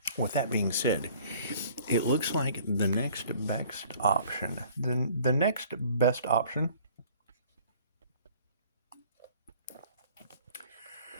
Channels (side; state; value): both; inverted; correlation -0.53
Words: with that being said, it looks like the next best option,